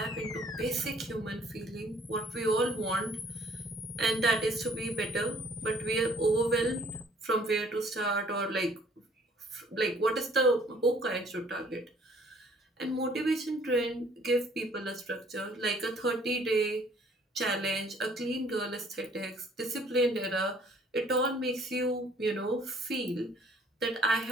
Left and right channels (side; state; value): both; normal; correlation 0.59